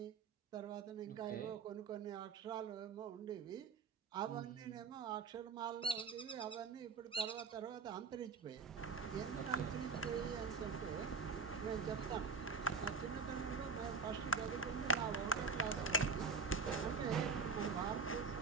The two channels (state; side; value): quieter; left; 4.7 dB